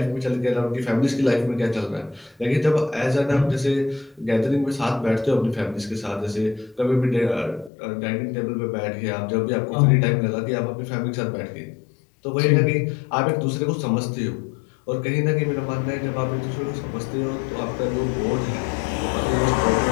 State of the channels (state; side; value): drops out; right; at 7.7 s